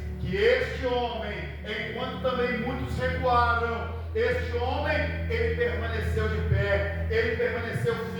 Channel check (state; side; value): identical; both; correlation 1.00